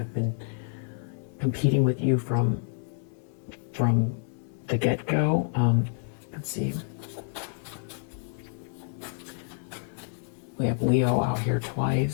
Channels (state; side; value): silent; right; digital silence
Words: been competing with you from the get-go. Let's see. We have Leo out here